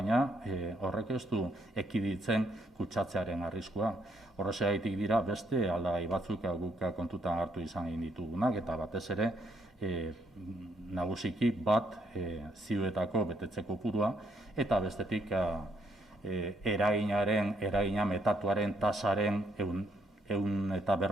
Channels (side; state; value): both; normal; correlation 0.72